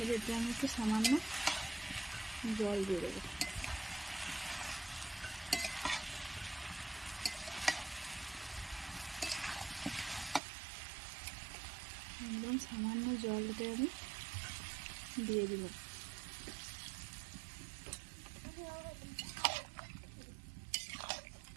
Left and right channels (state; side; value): drops out; left; at 10.4 s